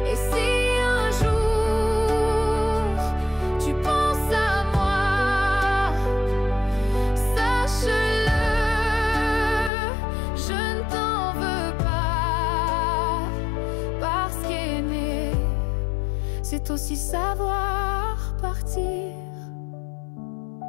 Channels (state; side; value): drops out; right; at 9.7 s